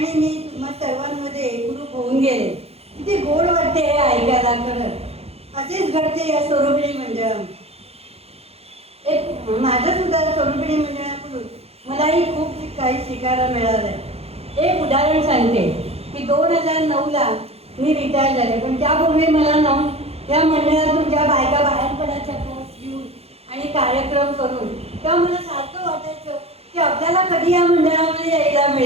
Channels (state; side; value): late; left; 0.29 ms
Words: मी तुम्हा सर्वांमध्ये एकरूप होऊन गेले. किती गोड वाटते हे ऐकायला. खरंच असेच घडते या स्वरूपिणी मंडळात. एक माझं सुद्धा स्वरूपिणी मंडळाकडून मलाही खूप काही शिकायला मिळालं. एक उदाहरण सांगते की 2009ला मी रिटायर झाले, पण त्यापूर्वी मला या मंडळातून ज्या बायका बाहेर पडायच्या कोर्स घेऊन आणि कार्यक्रम करून, तेव्हा मला सारखं वाटायचं की आपल्याला कधी या मंडळामध्ये यायला